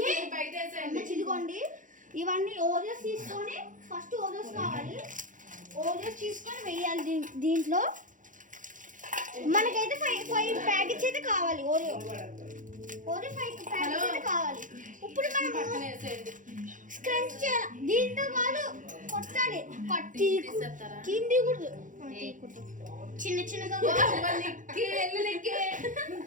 ఇదిగోండి. ఇవన్నీ ఓరియోస్ తీసుకొని ఫస్ట్ ఓరియోస్ కావాలి. ఓరియోస్ తీసుకొని వేయాలి దీంట్లో. మనకైతే 5 ప్యాకెట్స్ అయితే కావాలి. ఓరియో 5 ప్యాకెట్స్ అయితే కావాలి. ఇప్పుడు మనం స్క్రంచ్ చేయాలి. దీంతో వాళ్ళు కొట్టాలి. కింది కూడా చిన్న చిన్నగా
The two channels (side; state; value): left; late; 0.38 ms